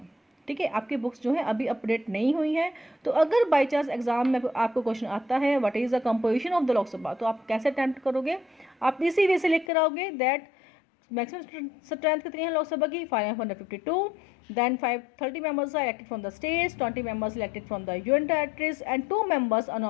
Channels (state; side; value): drops out; right; at 9.7 s